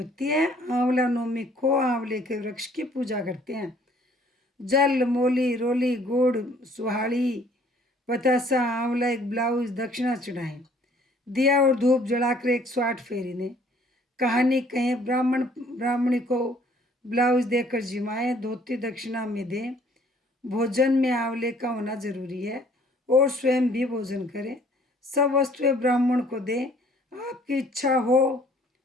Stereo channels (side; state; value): both; normal; correlation 0.59